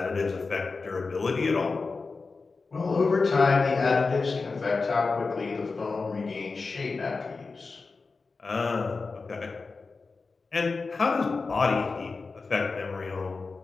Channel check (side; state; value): right; quieter; 4.2 dB